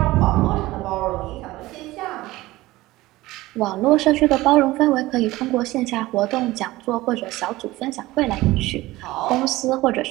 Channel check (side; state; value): left; quieter; 18.4 dB